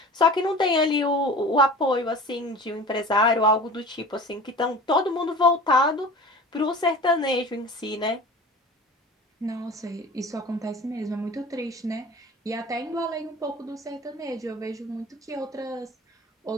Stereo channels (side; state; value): both; normal; correlation 0.39